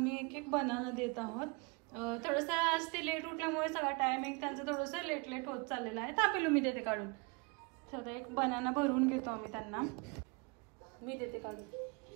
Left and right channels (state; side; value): quieter; left; 30.1 dB